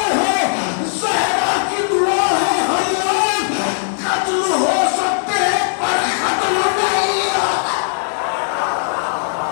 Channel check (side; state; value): right; silent; digital silence